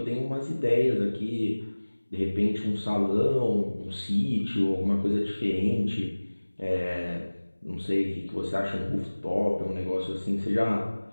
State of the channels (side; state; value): both; inverted; correlation -1.00